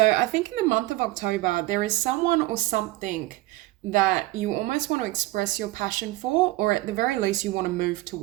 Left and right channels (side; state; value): left; quieter; 18.4 dB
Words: I think in the month of October, there is someone or something that you almost want to express your passion for, or at the very least you want to move